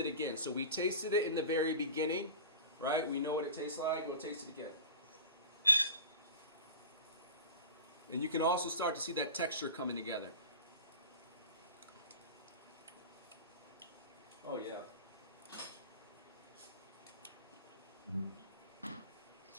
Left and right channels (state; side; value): inverted; both; correlation -0.35